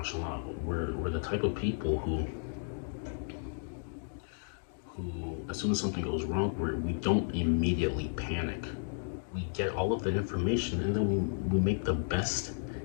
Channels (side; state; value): right; silent; digital silence